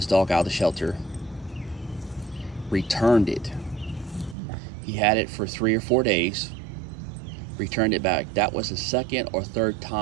dog out of the shelter, returned it. He had it for 3 or 4 days, returned it back. That was the second or third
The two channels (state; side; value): drops out; left; at 4.4 s